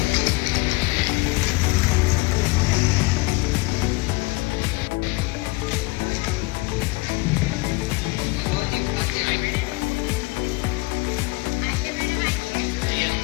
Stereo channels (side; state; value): right; quieter; 23.9 dB